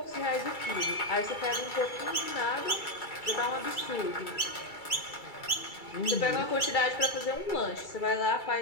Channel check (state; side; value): late; right; 2.3 ms